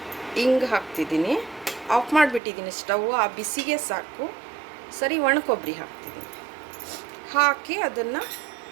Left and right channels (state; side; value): drops out; left; at 2.4 s